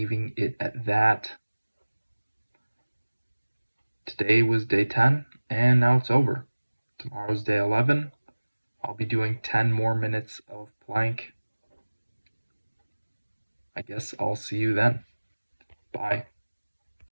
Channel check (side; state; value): both; inverted; correlation -1.00